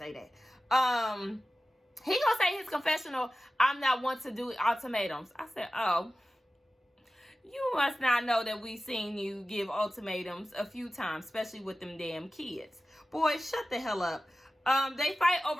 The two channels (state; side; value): normal; both; correlation 0.95